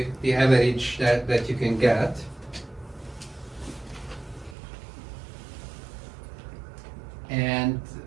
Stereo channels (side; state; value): left; drops out; at 4.5 s